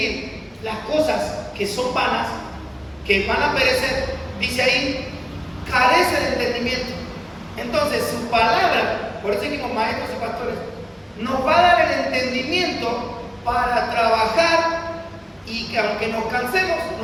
las cosas que son vanas, que van a perecer, dice ahí, carece de entendimiento. Entonces, su palabra, por eso dijimos maestros y pastores, nos va a dar el entendimiento para trabajar y que aunque nos cansemos,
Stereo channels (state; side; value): identical; both; correlation 1.00